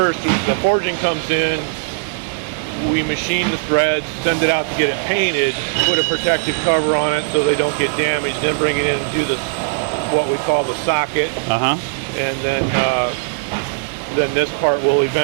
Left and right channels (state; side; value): quieter; left; 34.6 dB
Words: is the forging comes in, we machine the threads, send it out to get it painted, put a protective cover on it so they don't get damaged, then bring it in and do the what we call the socket. Uh-huh. And then this part will